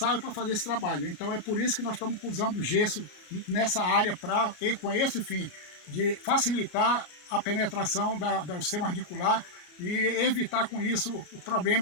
para fazer esse trabalho. Então é por isso que nós estamos usando o gesso nessa área, com esse fim de facilitar a penetração do sistema radicular e evitar com isso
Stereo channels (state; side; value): late; right; 34 ms